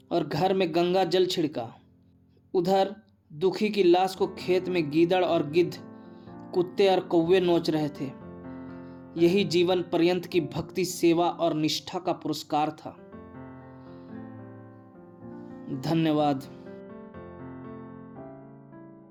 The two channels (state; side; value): identical; both; correlation 1.00